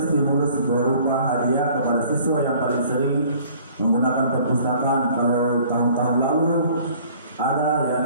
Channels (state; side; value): inverted; both; correlation -0.53